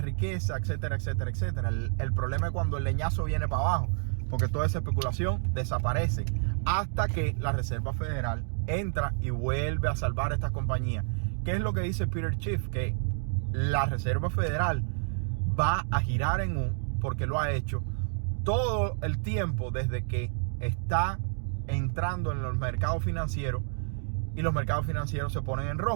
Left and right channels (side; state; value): left; silent; digital silence